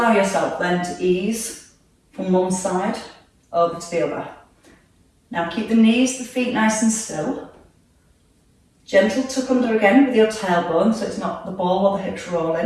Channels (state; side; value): identical; both; correlation 1.00